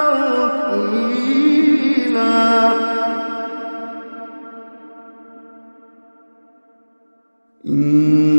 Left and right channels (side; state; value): both; inverted; correlation -1.00